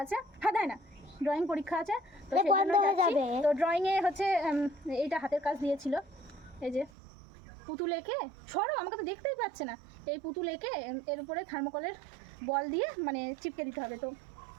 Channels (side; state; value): left; drops out; at 6.9 s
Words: আছে। হ্যাঁ, তাই না, ড্রয়িং পরীক্ষা আছে। তো সেই জন্য যাচ্ছি। তো ড্রয়িংয়ে হচ্ছে এইটা হাতের কাজ দিয়েছিল, এই যে পুতুল এঁকে, সরো, আমাকে তো দেখতেই পাচ্ছে না। এই পুতুল এঁকে এর উপরে থার্মোকলের বল দিয়ে মানে চিপকে দিতে হবে। তো